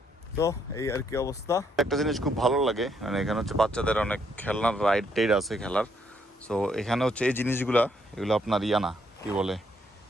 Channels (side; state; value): both; normal; correlation 0.72